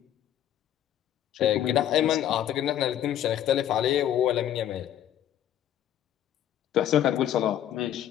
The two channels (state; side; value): quieter; right; 11.1 dB